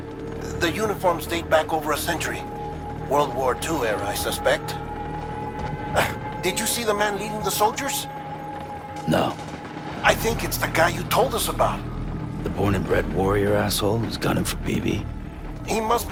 The uniforms date back over a century. World War II era, I suspect. Did you see the man leading the soldiers? No. I think it's the guy you told us about. The born and bred warrior asshole who's gunning for BB? He must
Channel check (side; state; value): both; identical; correlation 1.00